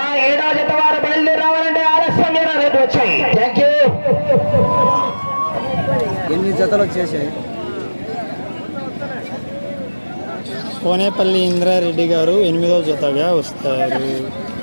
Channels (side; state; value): both; inverted; correlation -1.00